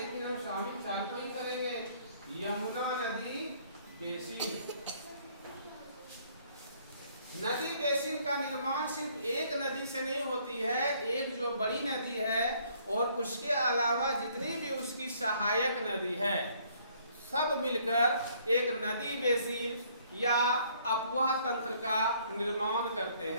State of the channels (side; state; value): both; inverted; correlation -0.63